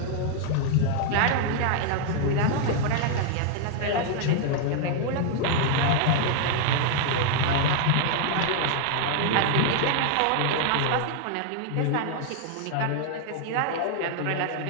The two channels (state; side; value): different; both; correlation 0.00